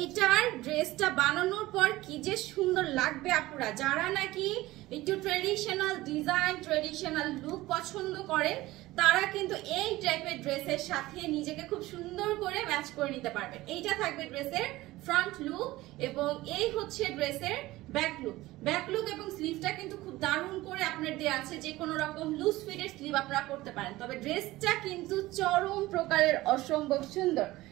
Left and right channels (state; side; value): quieter; left; 18.0 dB